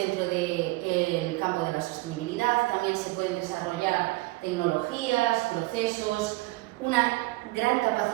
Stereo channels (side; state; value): left; quieter; 21.3 dB